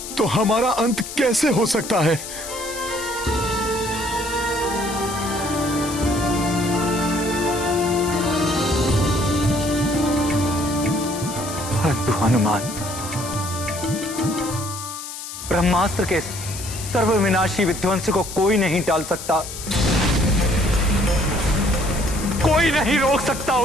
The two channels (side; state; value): left; noise; hiss, 10 dB below the sound